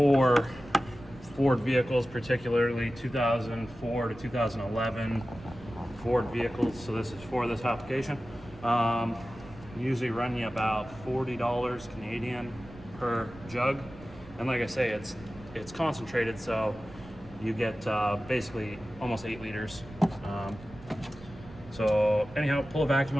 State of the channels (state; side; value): noise; right; rumble, 19 dB below the sound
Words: Ford vehicles, particularly 2004 to 2011 Ford vehicles. So this is for this application. Usually run you about $40 Canadian per jug, and like I say, it's concentrated, so you get basically almost 8 liters. So anyhow, pull a vacuum